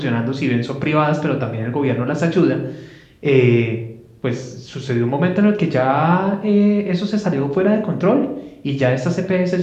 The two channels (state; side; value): identical; both; correlation 1.00